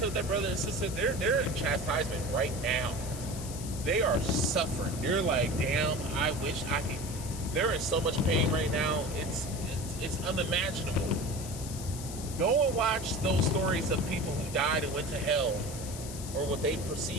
with that brother and sister, they're in chastisement right now. They are suffering. They're like, damn, I wish I could. They're in so much pain right now. It's unimaginable. Go and watch those stories of people who died and went to hell, or what they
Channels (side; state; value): left; noise; hiss, 11 dB below the sound